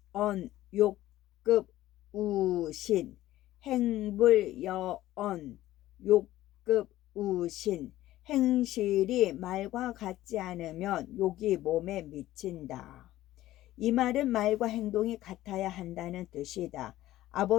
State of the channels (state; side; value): quieter; right; 15.1 dB